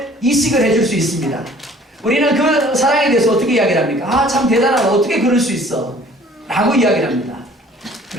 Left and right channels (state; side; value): normal; both; correlation 0.53